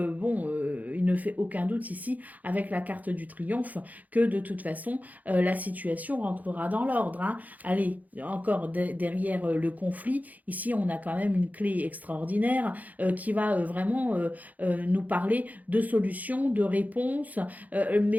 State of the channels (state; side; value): late; left; 0.079 ms